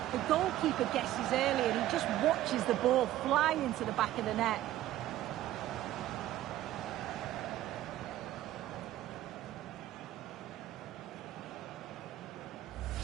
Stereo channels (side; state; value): left; quieter; 14.0 dB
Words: The goalkeeper guesses early and he just watches the ball fly into the back of the net.